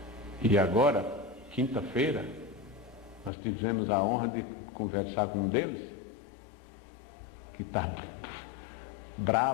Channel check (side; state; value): right; drops out; at 3.3 s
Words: E agora, quinta-feira, nós tivemos a honra de conversar com um deles, que está